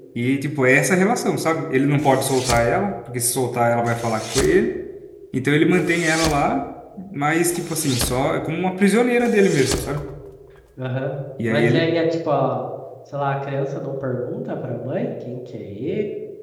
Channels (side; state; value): both; identical; correlation 1.00